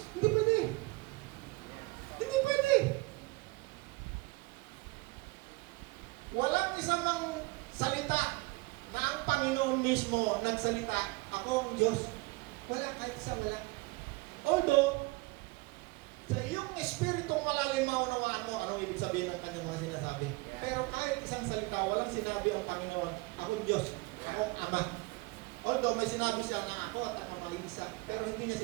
Hindi pwede. Hindi pwede. Walang isang salita na ang Panginoon mismo nagsalita, ako ang Diyos. Wala, kahit isa wala. Although, sa iyong espiritong malalim maunawaan mo, anong ibig sabihin ng kanyang mga sinasabi. Pero kahit isang salita, walang sinabi ang Panginoon, ako ang Diyos, ako ang Ama. Although may sinabi siya na ako at ang mag-iisa, pero hindi niya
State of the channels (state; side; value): quieter; left; 23.9 dB